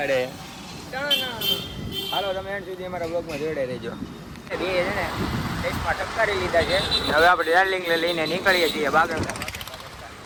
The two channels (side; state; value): both; identical; correlation 1.00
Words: હાલો, તમે એન્ડ સુધી અમારા બ્લોગમાં જોડાઈ રહેજો. બે છે ને ટેસ્ટમાં ટપકારી લીધા છે. હવે આપણે ડાર્લિંગને લઈને નીકળીએ છીએ બાગળ.